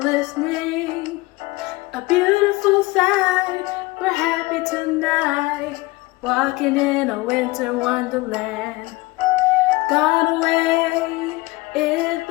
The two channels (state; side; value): quieter; right; 21.7 dB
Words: A beautiful sight, we're happy tonight, walking in a winter wonderland. Gone away is